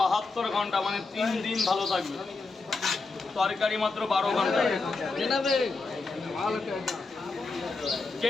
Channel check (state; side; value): quieter; right; 3.8 dB